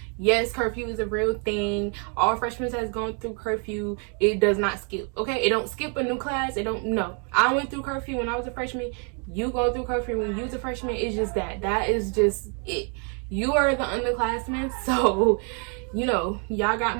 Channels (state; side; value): quieter; left; 39.8 dB